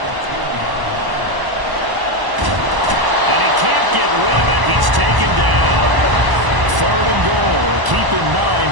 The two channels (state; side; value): late; left; 1.0 ms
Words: Can't get rid of it. He's taken down. 3rd and goal. Keep in mind,